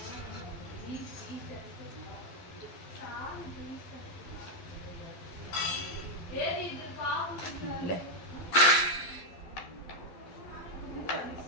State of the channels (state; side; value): late; right; 11 ms